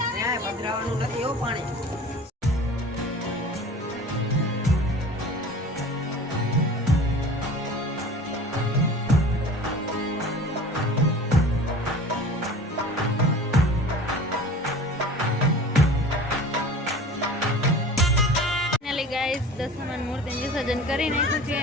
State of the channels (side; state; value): both; normal; correlation 0.41